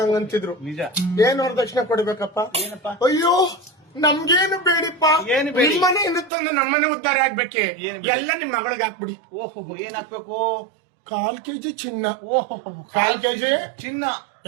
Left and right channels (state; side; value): drops out; left; at 6.3 s